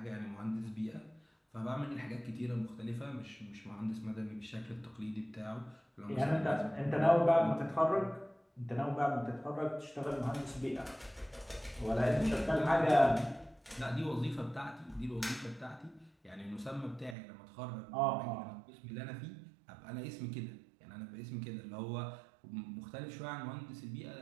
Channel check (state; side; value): drops out; left; at 17.2 s